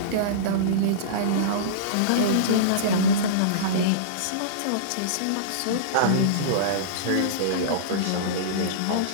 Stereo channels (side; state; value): both; different; correlation -0.04